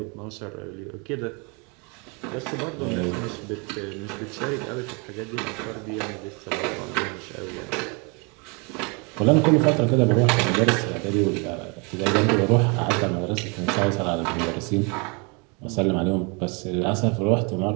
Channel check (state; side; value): quieter; left; 31.8 dB